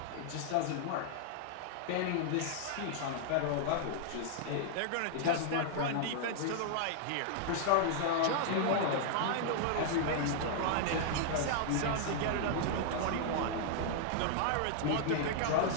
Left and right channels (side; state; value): both; different; correlation -0.01